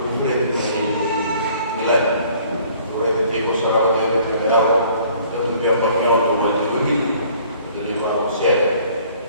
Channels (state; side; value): inverted; both; correlation -0.56